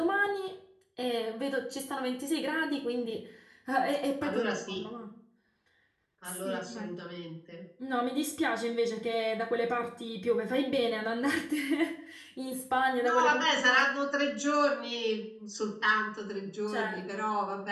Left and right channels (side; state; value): both; identical; correlation 1.00